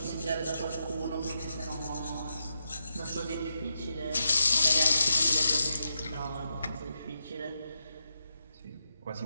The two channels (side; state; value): both; inverted; correlation -0.86